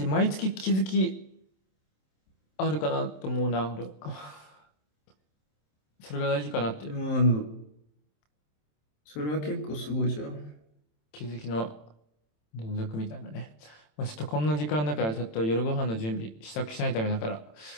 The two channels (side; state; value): right; late; 27 ms